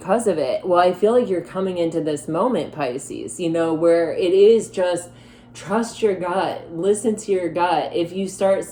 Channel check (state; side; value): identical; both; correlation 1.00